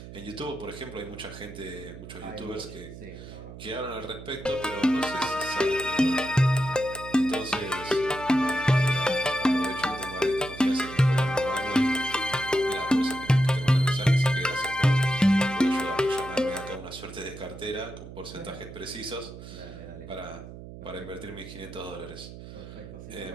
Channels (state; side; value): noise; right; hum, 14 dB below the sound